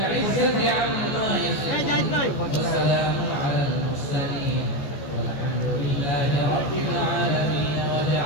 عما يصفون وسلام على المرسلين والحمد لله رب العالمين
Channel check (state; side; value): late; right; 14 ms